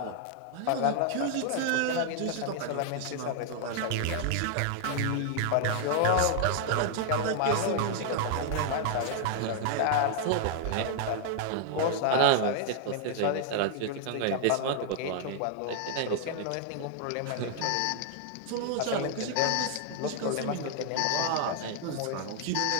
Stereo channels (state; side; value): different; both; correlation 0.00